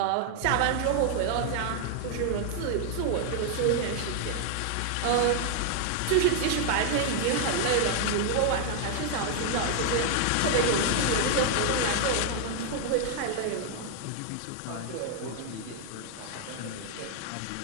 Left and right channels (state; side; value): different; both; correlation 0.00